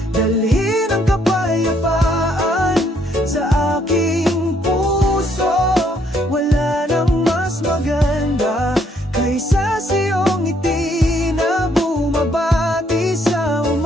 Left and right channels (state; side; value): normal; both; correlation 0.68